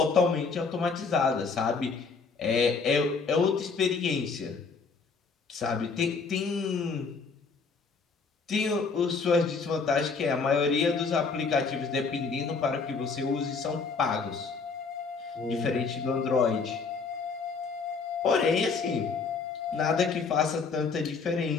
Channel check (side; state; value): right; quieter; 4.9 dB